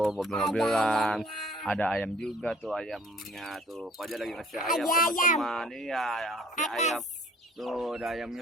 mobil-mobilan. Ada ayam juga tuh ayamnya tuh. Fajar lagi ngasih ayam teman-teman. Iya, ayam. Tuh ada ayamnya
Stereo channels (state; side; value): normal; both; correlation 0.54